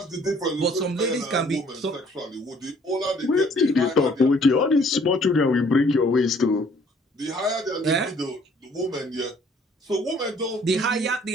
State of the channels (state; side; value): normal; both; correlation 0.59